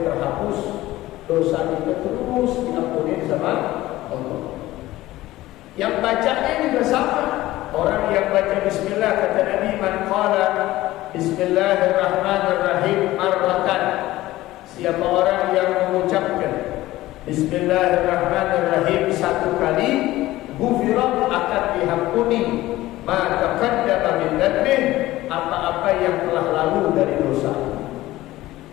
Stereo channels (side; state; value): right; quieter; 16.7 dB